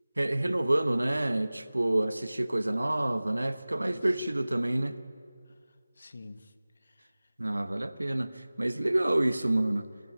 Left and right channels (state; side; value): inverted; both; correlation -0.99